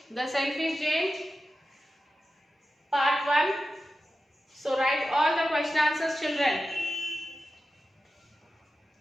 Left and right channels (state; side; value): normal; both; correlation 0.92